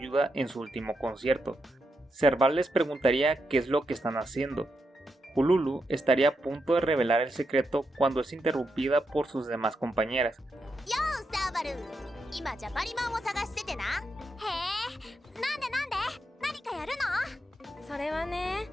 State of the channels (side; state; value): both; normal; correlation 0.84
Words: en su último concierto. Serval les preguntaría qué es lo que están haciendo. Hululu estaría a punto de revelar el secreto cuando es interrumpida por sus demás compañeras.